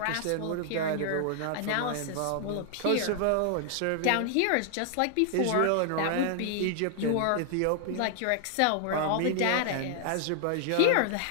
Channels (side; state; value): both; different; correlation 0.00